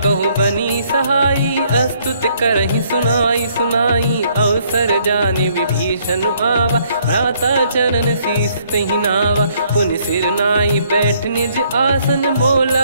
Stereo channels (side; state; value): both; inverted; correlation -0.66